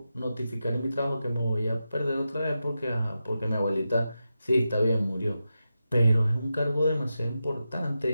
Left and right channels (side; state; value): both; inverted; correlation -0.90